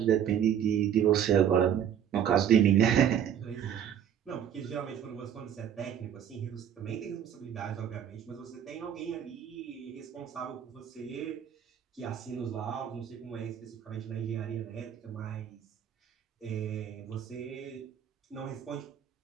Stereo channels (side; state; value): left; quieter; 9.2 dB